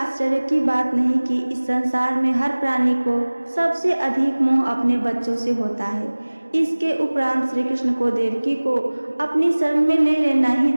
की बात नहीं कि इस संसार में हर प्राणी को सबसे अधिक मोह अपने बच्चों से होता है। इसके उपरांत श्री कृष्ण को देवकी को अपनी शरण में ले लेना ही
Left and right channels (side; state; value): both; inverted; correlation -1.00